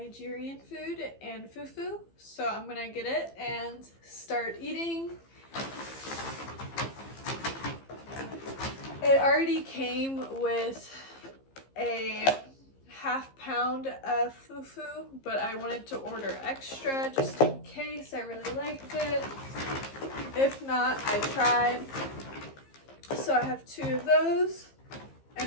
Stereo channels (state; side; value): late; right; 15 ms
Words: food and fufu, so I'm gonna get it and start eating. It already came with a half pound of fufu, but I wanted to order extra just in case I really liked it. If not, I tried. So I have 2 of those, and